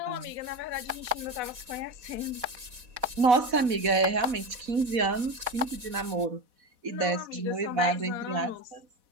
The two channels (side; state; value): left; late; 4.1 ms